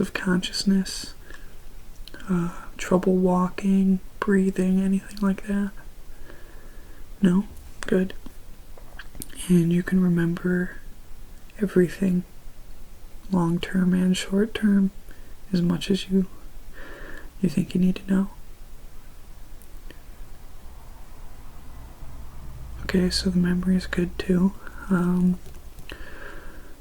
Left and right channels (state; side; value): identical; both; correlation 1.00